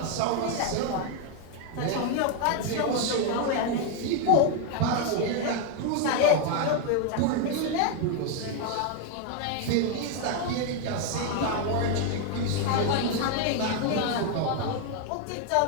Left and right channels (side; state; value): both; different; correlation 0.01